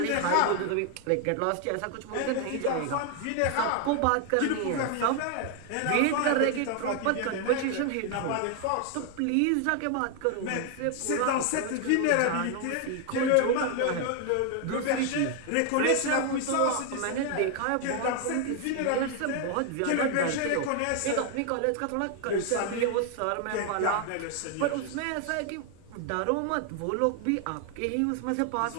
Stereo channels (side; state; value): both; different; correlation 0.00